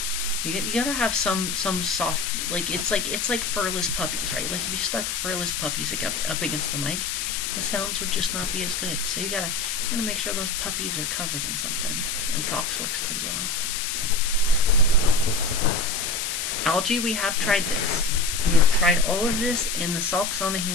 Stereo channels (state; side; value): noise; left; hiss, 2 dB below the sound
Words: you gotta have some soft, like it's like furless puppies, right? Like if you stuck furless puppies up against the mic, the sounds would just not be as good. So you gotta make sure those puppies are covered in something, and socks works pretty well. Algae, we have tried this. We have tried all of this, and the socks on the